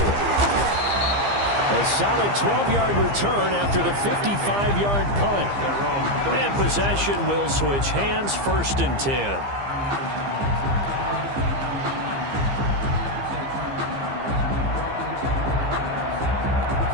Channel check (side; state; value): left; late; 15 ms